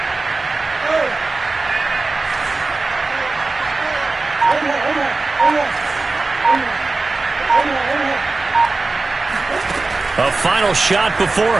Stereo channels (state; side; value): quieter; left; 3.6 dB